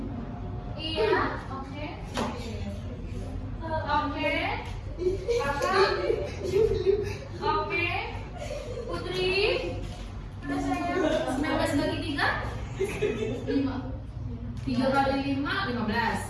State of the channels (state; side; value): identical; both; correlation 1.00